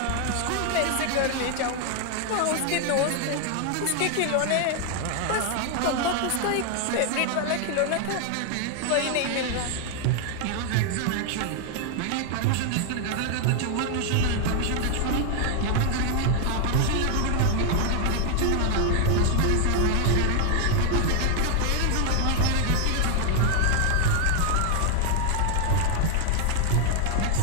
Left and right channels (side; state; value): both; different; correlation 0.00